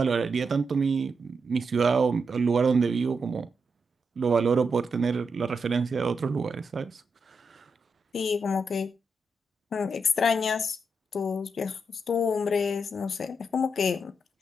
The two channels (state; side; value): normal; both; correlation 0.83